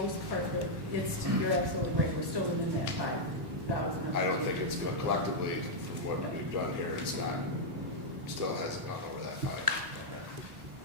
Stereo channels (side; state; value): left; late; 1.2 ms